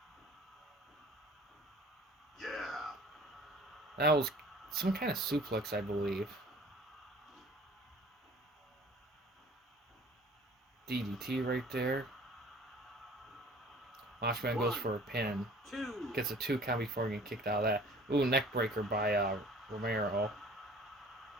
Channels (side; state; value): both; normal; correlation 0.49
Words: Yeah. That was some kind of suplex, I believe. DDT right there. Macho Man goes for a pin. 2. Gets a 2 count before getting kicked out of that. Ooh, neck breaker by Romero.